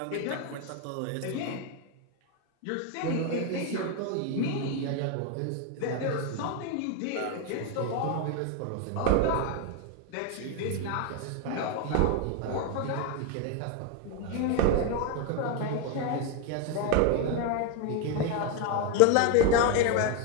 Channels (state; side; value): different; both; correlation 0.01